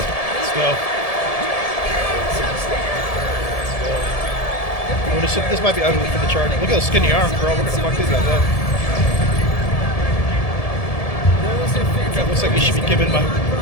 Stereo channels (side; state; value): right; late; 1.7 ms